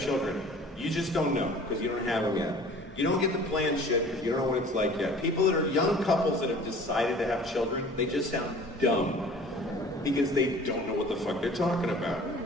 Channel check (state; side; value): normal; both; correlation 0.47